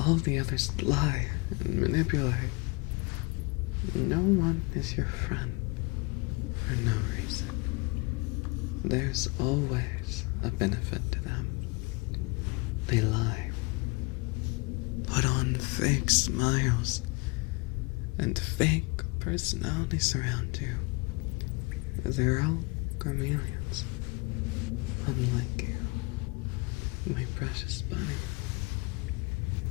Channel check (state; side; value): quieter; right; 27.4 dB